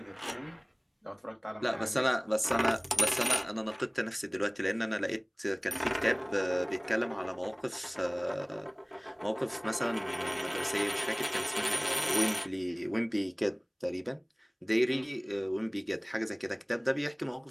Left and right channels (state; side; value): identical; both; correlation 1.00